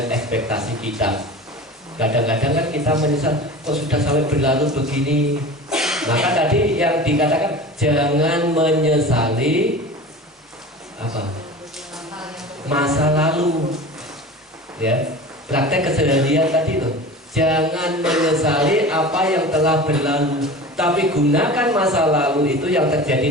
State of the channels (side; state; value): both; normal; correlation 0.35